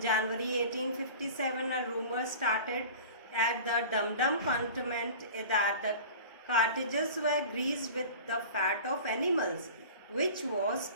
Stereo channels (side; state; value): both; inverted; correlation -0.39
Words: 1857, a rumor started at the Dum Dum cantonment that the cartridges were greased with the fat of animals, which was